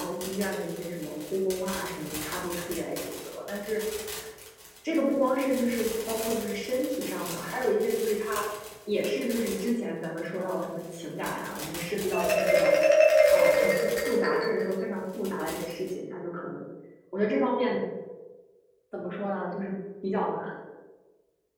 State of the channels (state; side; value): identical; both; correlation 1.00